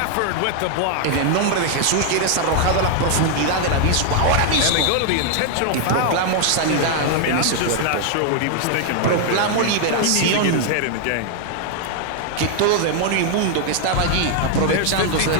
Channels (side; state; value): both; different; correlation 0.00